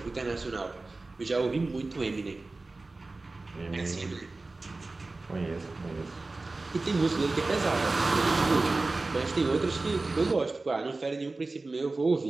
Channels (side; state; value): left; quieter; 3.4 dB